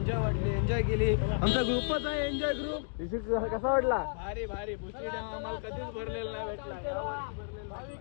वाटली, एन्जॉय केली. आमचा ग्रुपच आहे एन्जॉय ग्रुप. कसा वाटला? भारी भारी. भुशी डॅम आम्हाला कधीच भरलेला नाही भेटला.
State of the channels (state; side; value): silent; right; digital silence